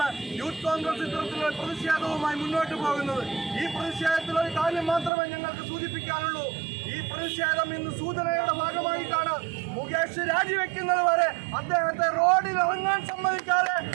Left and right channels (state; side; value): drops out; left; at 5.1 s